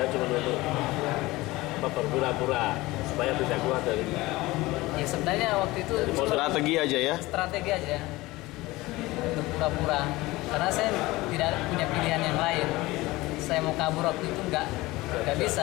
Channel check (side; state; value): right; quieter; 20.0 dB